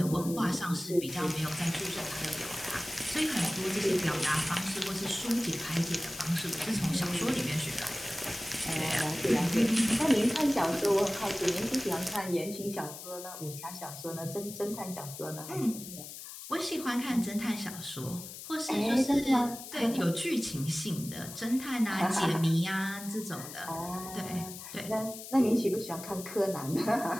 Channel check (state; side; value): noise; left; hiss, 11 dB below the sound